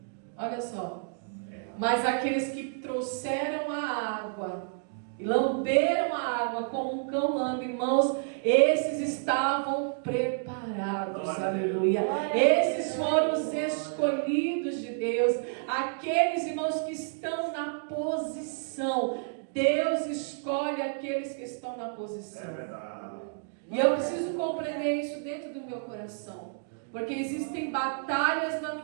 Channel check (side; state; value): left; silent; digital silence